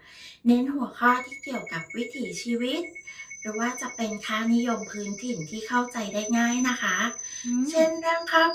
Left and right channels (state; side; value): identical; both; correlation 1.00